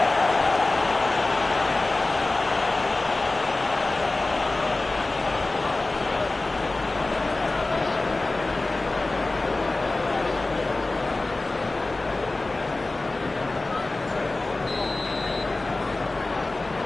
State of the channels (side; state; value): right; quieter; 3.1 dB